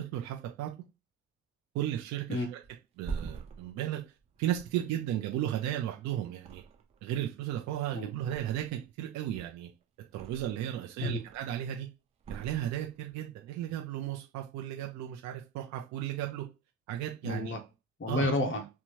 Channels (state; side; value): quieter; left; 6.3 dB